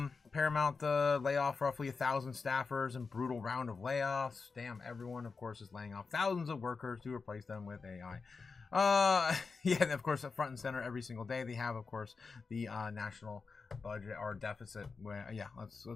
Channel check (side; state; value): right; quieter; 4.7 dB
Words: layoff roughly 1,000 staffers in brutal round of layoffs. Damn, everyone, of course, is laying off thousands of workers to replace them with AI. Yeah, and of course, front and center every single day they have, of course, the national budget or deficit. Yeah, let's